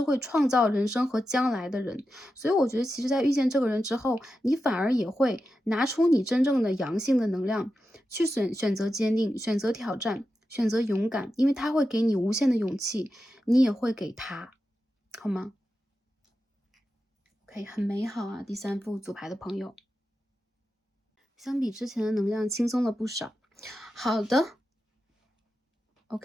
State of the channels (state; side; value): normal; both; correlation 0.90